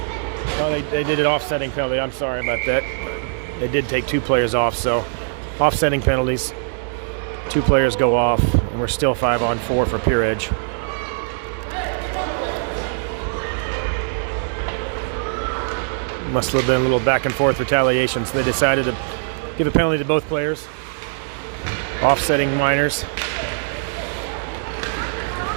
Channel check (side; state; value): left; silent; digital silence